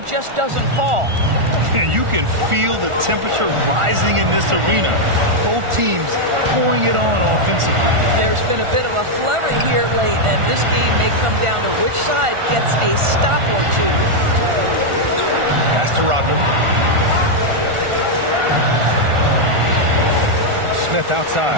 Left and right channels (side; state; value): left; late; 1.4 ms